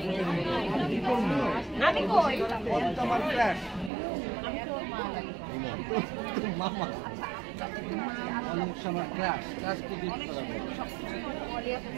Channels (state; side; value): drops out; left; at 3.9 s